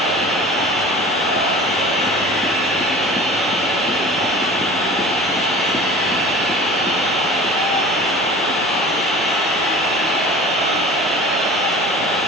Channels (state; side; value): normal; both; correlation 0.40